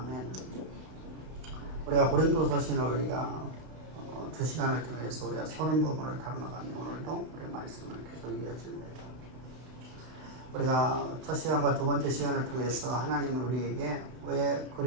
우리가 고린도서신을 우리가 2시간을 통해서 우리가 30부분을 다뤄나가는 오늘도 우리 말씀을 계속 이어집니다. 우리가 첫 시간과 두 번째 시간을 통해서 하나님은 우리에게 왜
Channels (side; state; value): left; late; 32 ms